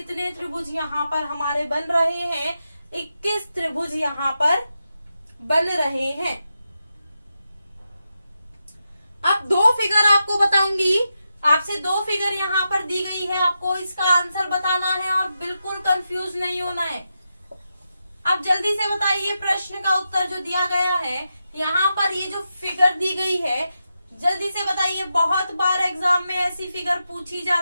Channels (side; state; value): both; inverted; correlation -0.87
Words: त्रिभुज यहाँ पर हमारे बन रहे हैं? 21 त्रिभुज यहाँ पर बन रहे हैं। अब 2 फिगर आपको बताऊंगी, आपसे 2 फिगर यहाँ पर दी गई है, आपको इसका आंसर बताना है और बिल्कुल कंफ्यूज नहीं होना है। अब जल्दी से बताइए प्रश्न का उत्तर जो दिया गया है। यहाँ पर ये जो फिगर दी गई है, जल्दी से बताइए। बहुत बार एग्जाम में ऐसी फिगर पूछी